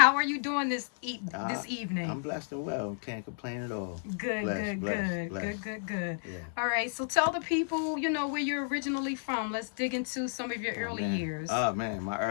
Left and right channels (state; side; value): silent; right; 57 dB below the other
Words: are you doing this evening? I'm blessed and well. Can't complain at all. Good. Yeah. All right, so tell the people, where you're originally from. Let's dig into some of your early years. Oh, man, my